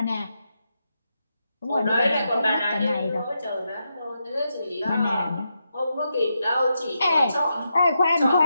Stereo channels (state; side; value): inverted; both; correlation -0.85